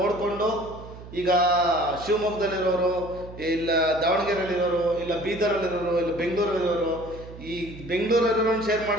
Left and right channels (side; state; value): right; noise; hum, 15 dB below the sound